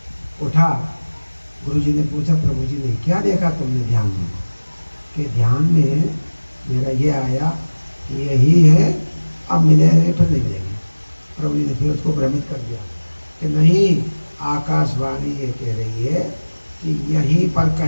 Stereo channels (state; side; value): inverted; both; correlation -1.00